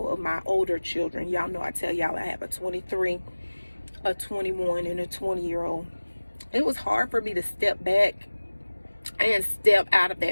of my older children. Y'all know I tell y'all I have a 23, a 21, and a 20-year-old. It was hard for me to step back and step out of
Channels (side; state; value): both; inverted; correlation -1.00